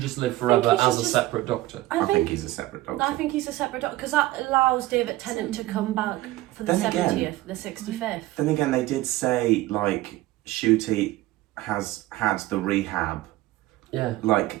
live forever he should as a just- separate Doctor? I think he's a separate Doctor. I think he's a separate Doctor, because that allows David Tennant to come back for the Then 70th, again- the 65th. Then again, they did say, like, Shooty has had the rehab. Yeah.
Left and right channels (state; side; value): quieter; left; 17.2 dB